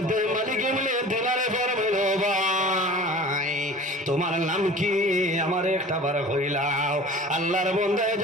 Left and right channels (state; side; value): normal; both; correlation 0.41